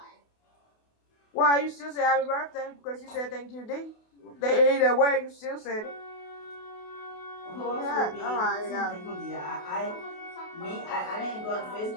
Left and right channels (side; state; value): right; late; 28 ms